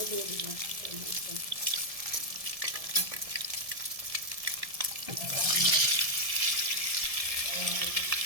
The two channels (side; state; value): left; late; 1.7 ms